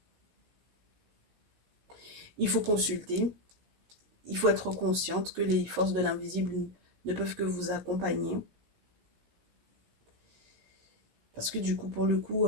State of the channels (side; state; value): left; late; 17 ms